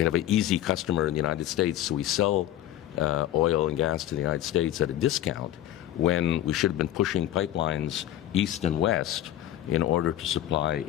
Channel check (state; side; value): quieter; right; 12.7 dB